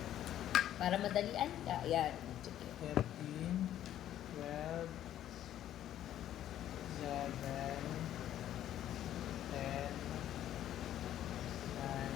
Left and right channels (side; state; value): right; quieter; 11.8 dB